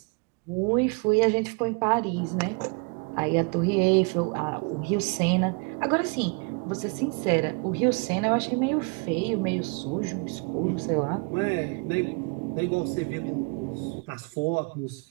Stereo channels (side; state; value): left; quieter; 32.4 dB